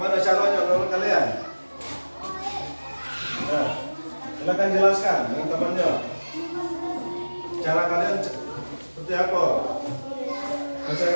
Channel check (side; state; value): both; inverted; correlation -1.00